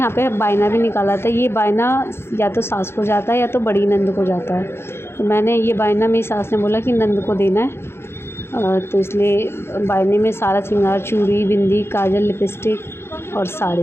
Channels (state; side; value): late; right; 0.12 ms